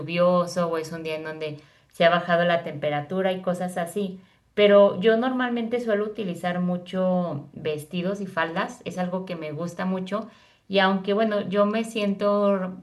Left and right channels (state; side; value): identical; both; correlation 1.00